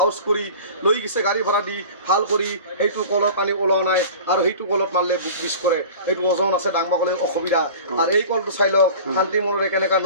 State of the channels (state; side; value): inverted; both; correlation -0.39